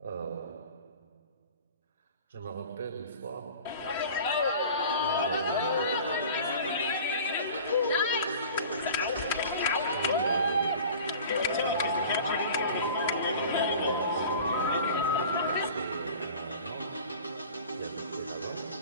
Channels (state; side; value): inverted; both; correlation -0.41